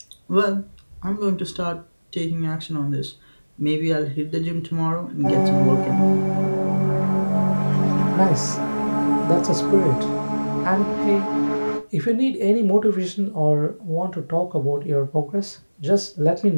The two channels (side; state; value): both; inverted; correlation -1.00